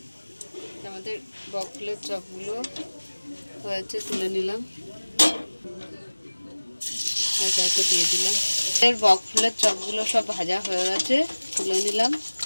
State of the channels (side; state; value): both; inverted; correlation -1.00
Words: আমাদের বক ফুলের চপগুলো হয়েছে, তুলে নিলাম, একে একে দিয়ে দিলাম। বক ফুলের চপগুলো সব ভাজা হয়ে গেছে, তুলে নিলাম।